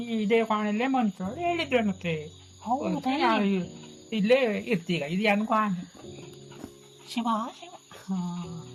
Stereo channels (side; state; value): both; identical; correlation 1.00